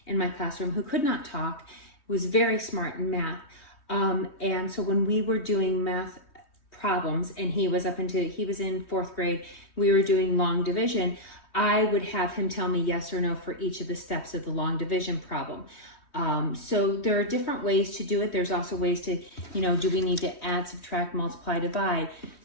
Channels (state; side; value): late; right; 3.1 ms